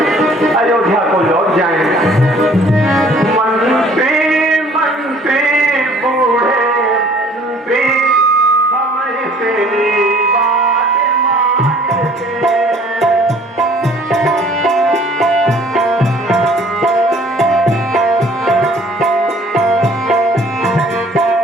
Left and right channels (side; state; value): both; normal; correlation 0.55